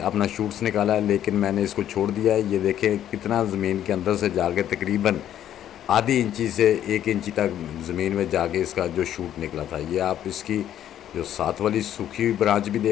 अपना शूट्स निकाला है, लेकिन मैंने इसको छोड़ दिया है। ये देखें कितना ज़मीन के अंदर से जाके तकरीबन आधी इंची से 1 इंची तक ज़मीन में जाके इसका जो शूट निकला था। ये आप इसकी जो साथ वाली सूखी हुई ब्रांच भी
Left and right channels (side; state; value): right; quieter; 11.0 dB